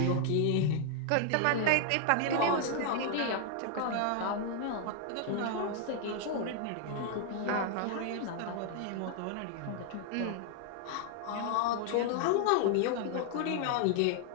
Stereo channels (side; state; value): both; different; correlation 0.00